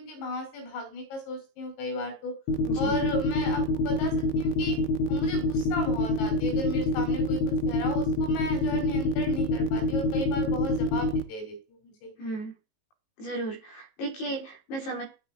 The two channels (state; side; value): late; right; 18 ms